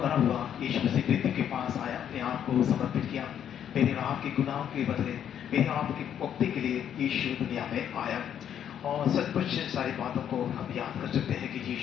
हुआ, यीशु मसीह मृत्यु के पास आया, अपने आप को समर्पित किया। मेरे और आपके गुनाहों के बदले, मेरे आपकी मुक्ति के लिए यीशु दुनिया में आया। और सचमुच सारी बातों को हम याद कर सकते हैं कि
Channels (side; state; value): right; quieter; 9.4 dB